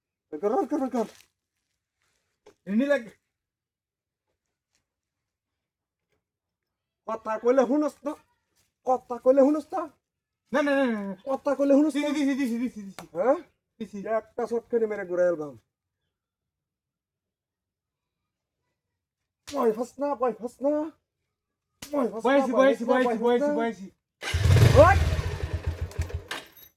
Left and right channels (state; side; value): identical; both; correlation 1.00